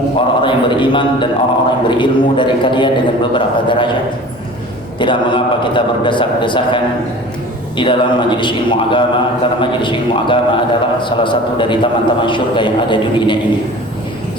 orang-orang yang beriman dan orang-orang yang berilmu dari kalian dengan beberapa derajat. Tidak mengapa kita berdesak-desakan di dalam majelis ilmu agama, karena majelis ilmu agama adalah salah satu dari taman-taman syurga yang ada di dunia ini.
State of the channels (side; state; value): both; normal; correlation 0.41